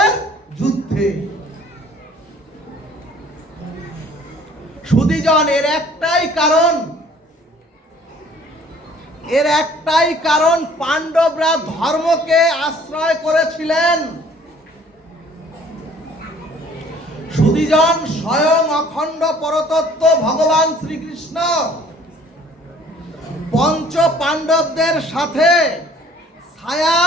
যুদ্ধে। সুধীজন, এর একটাই কারণ পাণ্ডবরা ধর্মকে আশ্রয় করেছিলেন। সুধীজন, স্বয়ং অখণ্ড পরতত্ত্ব ভগবান শ্রীকৃষ্ণ পঞ্চ পাণ্ডবদের সাথে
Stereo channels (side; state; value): both; normal; correlation 0.55